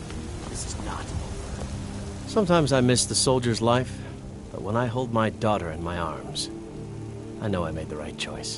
This is not over. Sometimes I miss the soldier's life, but when I hold my daughter in my arms, I know I made the right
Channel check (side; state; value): both; identical; correlation 1.00